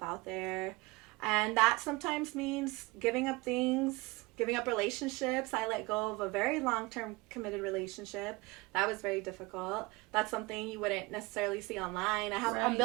out there. And that sometimes means giving up things, giving up relationships. I let go of a very long-term committed relationship. That was very difficult. That's something you wouldn't necessarily see online. I'm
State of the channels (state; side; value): quieter; left; 23.8 dB